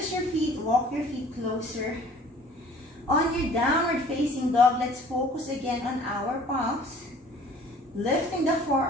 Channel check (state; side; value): normal; both; correlation 0.51